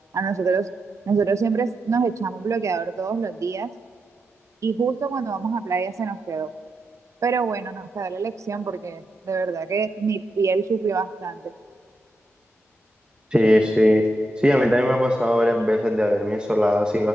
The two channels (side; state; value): both; normal; correlation 0.86